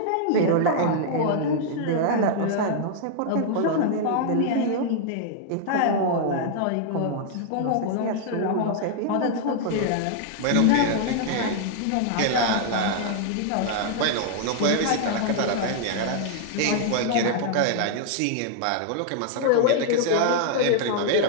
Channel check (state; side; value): different; both; correlation -0.01